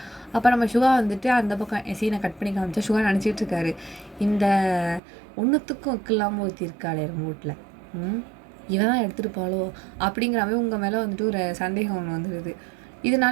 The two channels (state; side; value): drops out; left; at 5.0 s